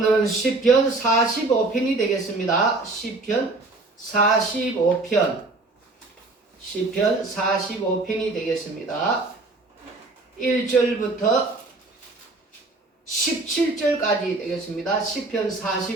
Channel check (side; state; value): left; quieter; 3.2 dB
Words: 시편 45편이 되겠습니다. 시편 45편. 시편 45편이 되겠습니다. 1절부터 17절까지 되겠습니다. 시편